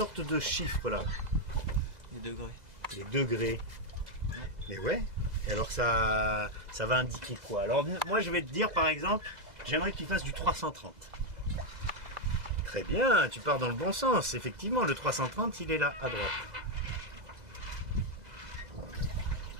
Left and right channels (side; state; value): left; late; 2.0 ms